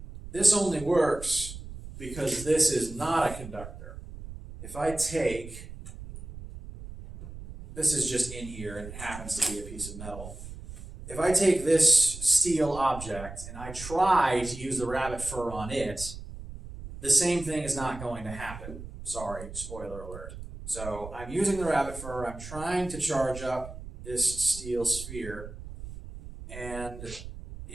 this only works because this is not a conductor. If I take, this is just in here and it happens to be a piece of metal. If I take this steel object and I try to use the rabbit fur on it, the same thing is not going to happen. Sorry, spoiler alert. So I'm using the rabbit fur, I'm trying to charge up this steel sphere, and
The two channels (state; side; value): noise; right; rumble, 12 dB below the sound